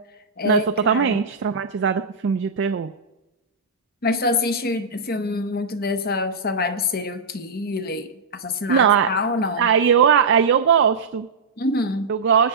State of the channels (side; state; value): left; quieter; 4.1 dB